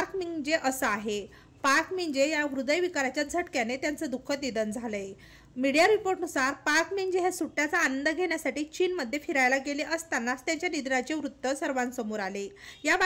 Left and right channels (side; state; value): both; identical; correlation 1.00